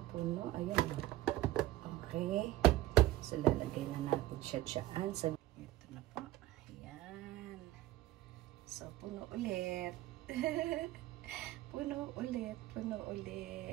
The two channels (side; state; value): left; quieter; 15.8 dB